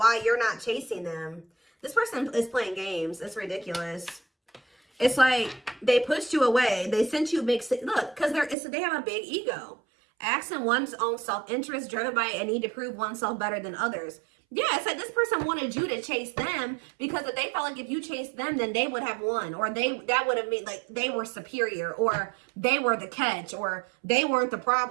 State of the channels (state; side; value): drops out; left; at 8.6 s